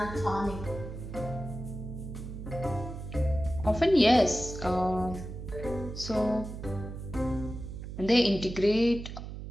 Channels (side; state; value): right; noise; hum, 9 dB below the sound